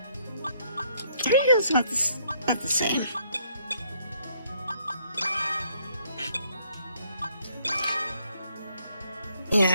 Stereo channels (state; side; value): inverted; both; correlation -0.67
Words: I think it was about the same.